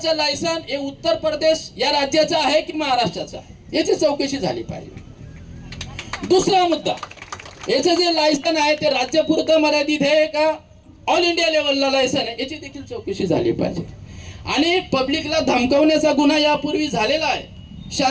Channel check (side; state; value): both; identical; correlation 1.00